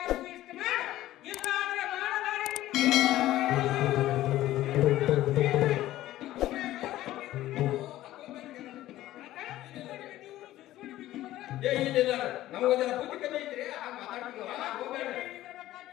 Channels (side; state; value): right; quieter; 14.8 dB